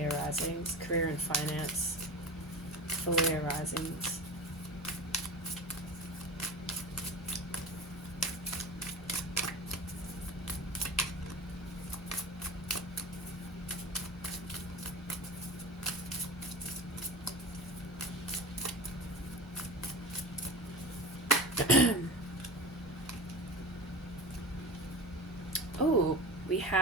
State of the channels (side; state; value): both; normal; correlation 0.32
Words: risings. Career and finance for Leo risings. Oh, we